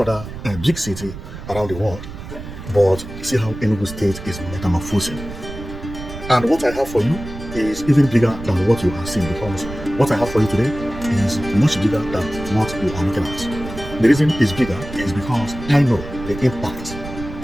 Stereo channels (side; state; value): right; noise; rumble, 11 dB below the sound